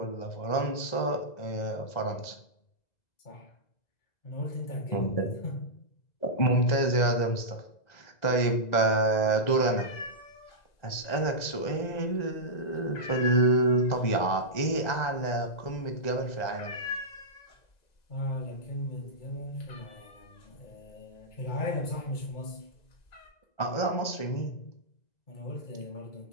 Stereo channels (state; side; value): late; right; 2.0 ms